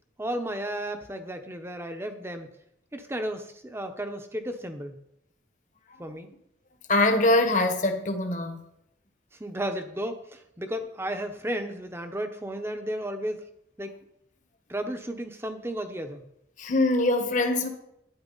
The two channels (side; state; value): both; normal; correlation 0.30